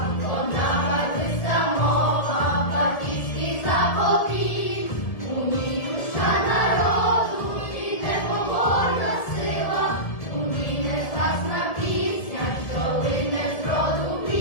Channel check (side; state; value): right; late; 1.7 ms